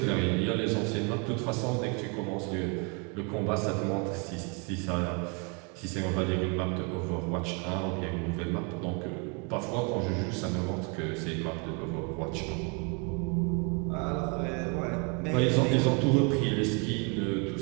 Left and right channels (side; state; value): left; quieter; 33.7 dB